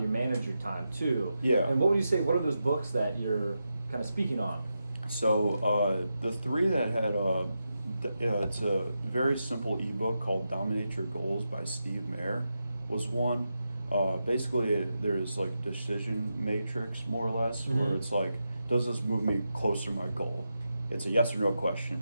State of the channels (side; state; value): both; inverted; correlation -0.88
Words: you manage your time too. And what would you say, what are those books that you're kind of speaking on? So the three that had it's a very simple ebook called Dominate Your Goals by Steve Mayer was one. Basically there's like decision matrix more or less, where it's like, does this move me closer to my goal? It's a yes or no